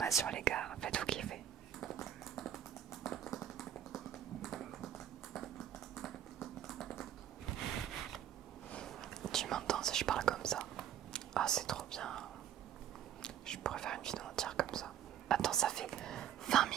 les gars, faites-vous kiffer. Tu m'entends si je parle comme ça? Ah, c'est trop bien. Je pourrais faire une vidéo entière comme ça. Attends, ça fait 20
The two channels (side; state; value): left; quieter; 10.3 dB